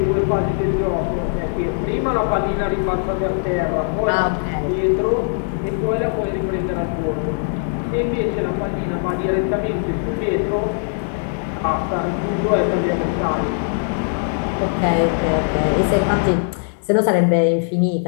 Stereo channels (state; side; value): silent; right; digital silence